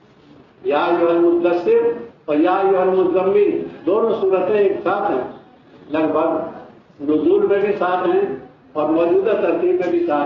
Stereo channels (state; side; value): identical; both; correlation 1.00